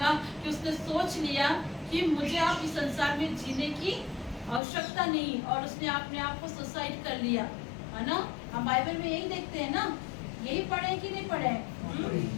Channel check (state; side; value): drops out; right; at 4.6 s